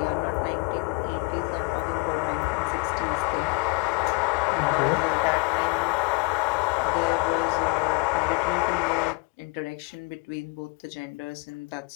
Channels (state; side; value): quieter; right; 26.3 dB